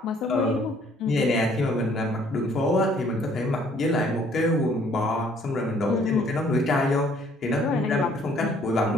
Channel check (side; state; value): both; normal; correlation 0.61